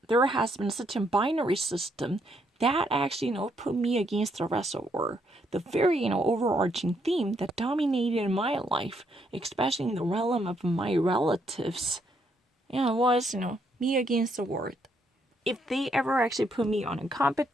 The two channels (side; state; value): both; normal; correlation 0.74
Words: has been such a binary system that actually, put me against the rest of the world. The very, overarching theme that dominated my life, especially in the realm of my relatives, was, me against the world. If they ever actually put me on a